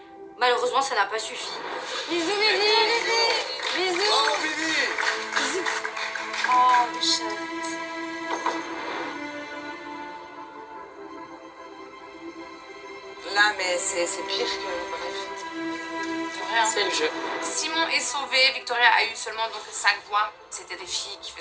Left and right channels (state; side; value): identical; both; correlation 1.00